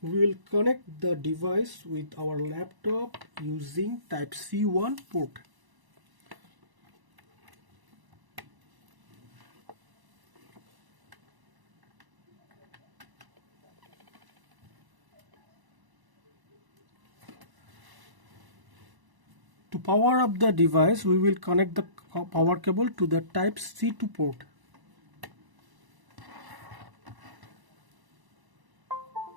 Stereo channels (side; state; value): left; late; 1.0 ms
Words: we will connect the device with our laptop using type C1 port. To power up the device, we will connect the power cable to the type C2 port.